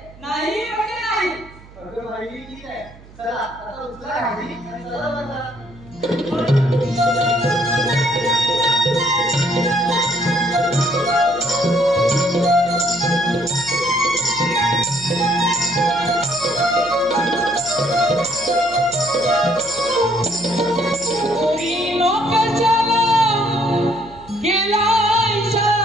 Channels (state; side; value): noise; right; hum, 22 dB below the sound